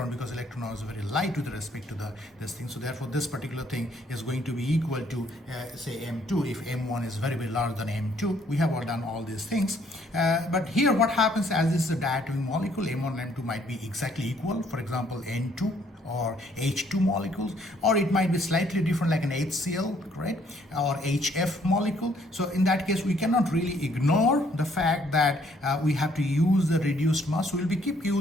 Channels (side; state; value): both; normal; correlation 0.65